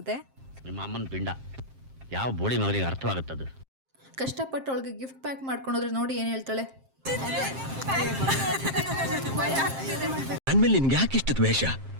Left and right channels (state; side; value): late; left; 7.5 ms